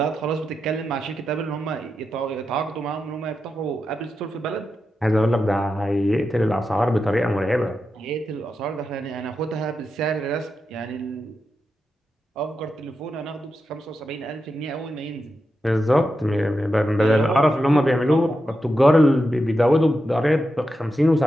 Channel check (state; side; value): normal; both; correlation 0.88